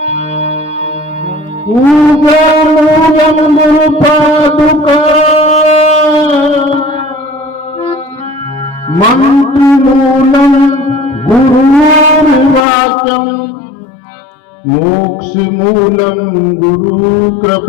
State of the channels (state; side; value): drops out; right; at 12.7 s